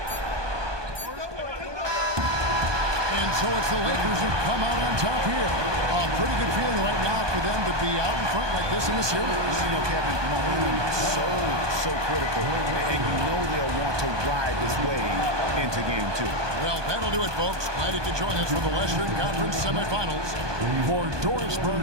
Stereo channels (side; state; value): left; late; 1.2 ms